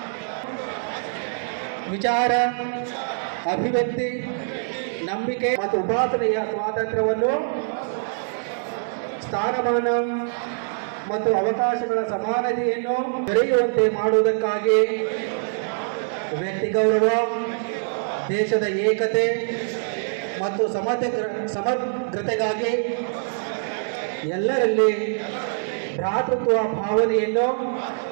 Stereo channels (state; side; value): silent; left; 62 dB below the other